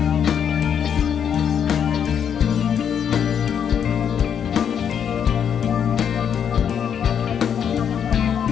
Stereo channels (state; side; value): quieter; right; 8.2 dB